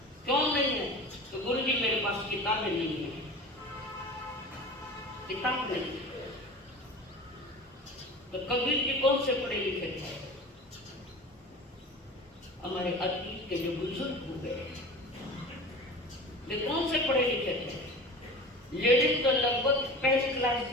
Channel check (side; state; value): both; normal; correlation 0.35